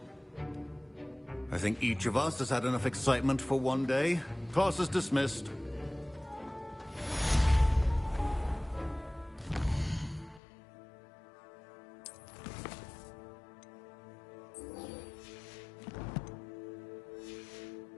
I think each of us has had enough excitement for one day. Class is dismissed.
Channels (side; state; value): right; drops out; at 10.4 s